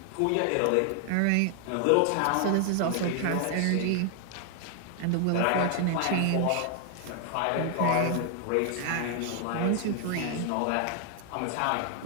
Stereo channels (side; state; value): both; different; correlation 0.00